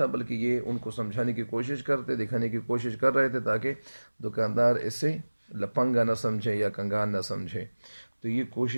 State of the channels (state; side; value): inverted; both; correlation -1.00